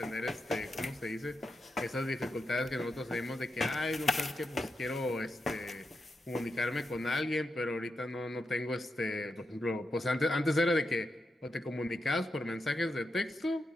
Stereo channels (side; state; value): both; normal; correlation 0.86